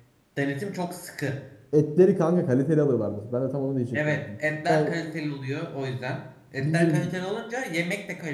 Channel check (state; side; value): identical; both; correlation 1.00